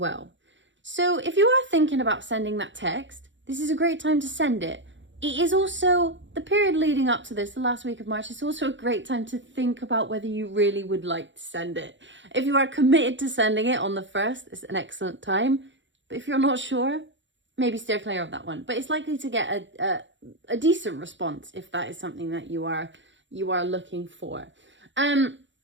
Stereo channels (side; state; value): left; late; 0.54 ms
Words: So if you are thinking about sending that text, this is a great time to send it. It is also the period leading up to this, the last week of March. It's also a great time to think about whether you really would like to send it. If you are committed to sending it on the 1st, it's an excellent time. But if you're not sure, maybe steer clear of that one. But it's likely to get a decent response if that is something that you are looking for.